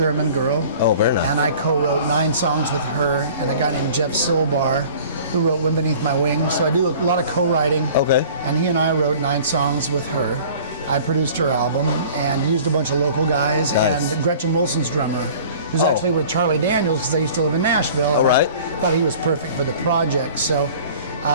girl. Oh, very nice. And I co-wrote 9 songs with her and a guy named Jeff Silbar. who wrote Wind Beneath My Wings. So I do a lot of co-writing. Okay. And he and I wrote 9 songs with her. I produced her album and used a bunch of local guys. Nice. And Gretchen Wilson's drummer, who's actually with Charlie Daniels because I used to live in Nashville. All right. I thought he was perfect for the project. So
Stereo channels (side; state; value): both; inverted; correlation -0.46